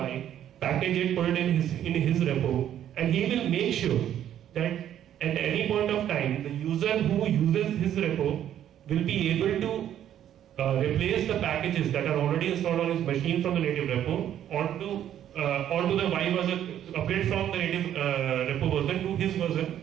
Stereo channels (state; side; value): quieter; left; 10.8 dB